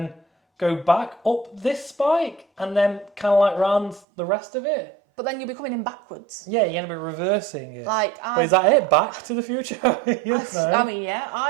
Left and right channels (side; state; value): left; drops out; at 4.0 s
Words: go back up this spike, and then kind of like round the rest of it. But then you'll be coming in backwards. Yeah, you're going to be reversing it. Like, But is that it? Back to the Future? Yes, no. I mean, yeah,